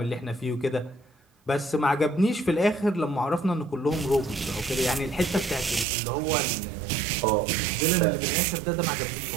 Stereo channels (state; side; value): drops out; left; at 5.9 s